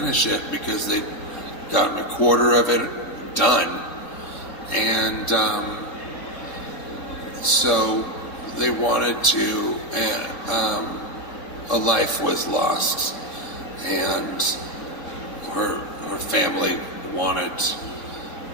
it because they'd gotten a quarter of it done, and so they wanted to, a life was lost, and her family wanted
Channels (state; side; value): late; right; 3.6 ms